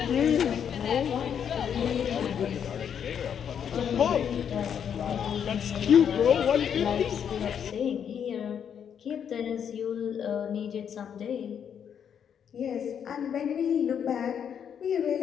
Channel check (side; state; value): right; quieter; 8.2 dB